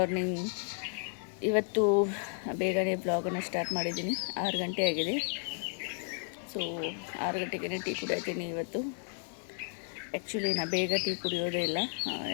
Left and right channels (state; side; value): silent; right; 56 dB below the other